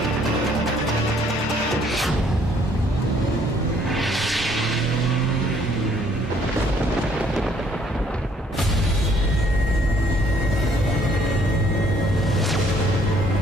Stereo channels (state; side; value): normal; both; correlation 0.63